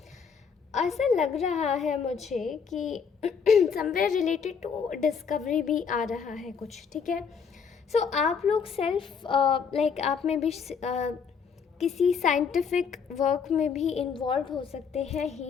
ऐसा लग रहा है मुझे कि समवेयर रिलेटेड टू डिस्कवरी भी आ रहा है कुछ। ठीक है। सो आप लोग सेल्फ आप में भी किसी साइंटिफिक वर्क में भी इन्वॉल्व हो सकते हैं,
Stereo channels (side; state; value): right; quieter; 6.3 dB